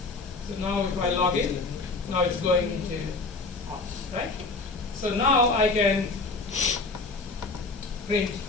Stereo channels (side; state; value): right; quieter; 3.6 dB